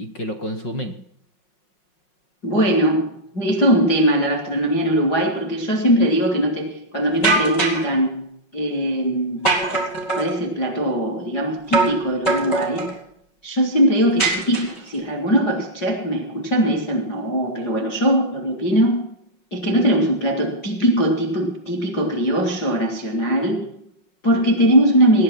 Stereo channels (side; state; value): right; late; 5.5 ms